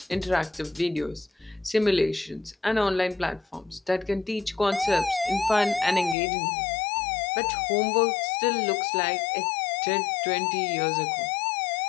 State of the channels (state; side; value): drops out; right; at 6.2 s